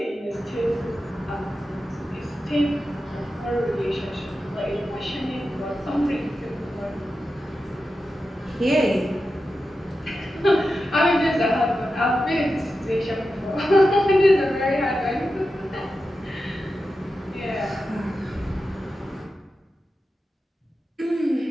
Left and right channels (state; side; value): normal; both; correlation 0.91